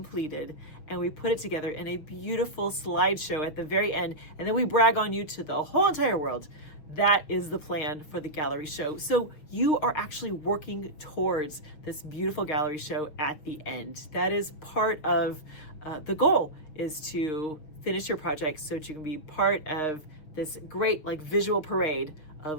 and we put it together in a beautiful slideshow at the very end, and then we brag on you to the whole entire world. That is the plan for the gallery show. So you are actually working towards this beautiful gallery show at the end. That is part of the goal, is to finish your project so that you can be part of this great visual parade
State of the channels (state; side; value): late; right; 6.7 ms